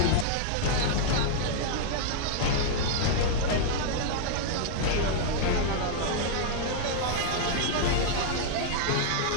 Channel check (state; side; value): different; both; correlation -0.01